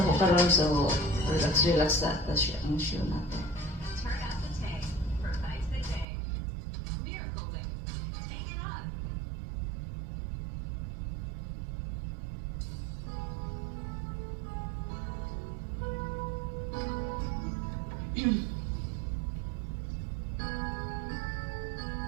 so relax sa siya ang show natin.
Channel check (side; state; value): left; drops out; at 6.1 s